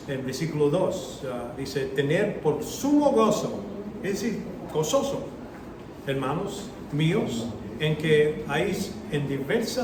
en versículo 2, dice, tener por sumo gozo, es decir, gozoso, hermanos míos, en que hay en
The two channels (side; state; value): both; identical; correlation 1.00